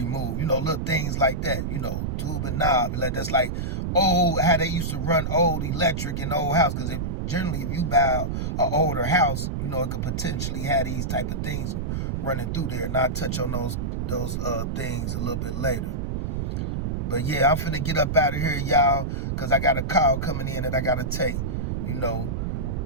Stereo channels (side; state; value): right; noise; rumble, 2 dB below the sound